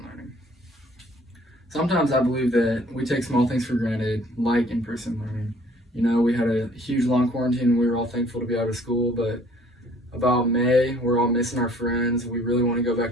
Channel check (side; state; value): both; normal; correlation 0.56